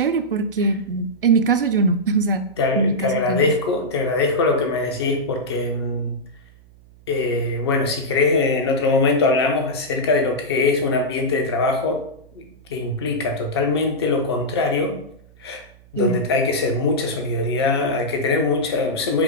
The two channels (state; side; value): noise; right; hum, 25 dB below the sound